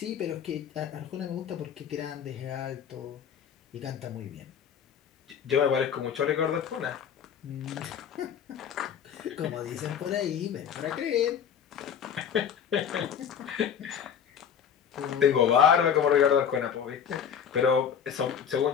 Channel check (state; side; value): quieter; right; 8.0 dB